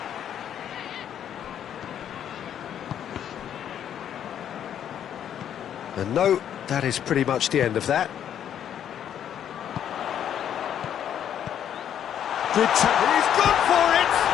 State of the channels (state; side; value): quieter; right; 9.7 dB